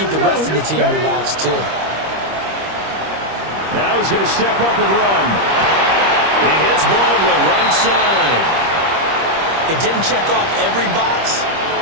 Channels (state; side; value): late; left; 25 ms